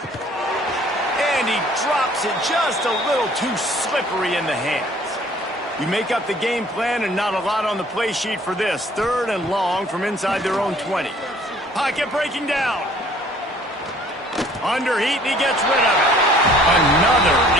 And he drops it just a little too slippery in the hands. You make up the game plan and not a lot on the play sheet for this. 3rd and long from inside their own 20. Pocket breaking down. Under heat, and he gets rid of it. Another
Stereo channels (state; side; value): normal; both; correlation 0.56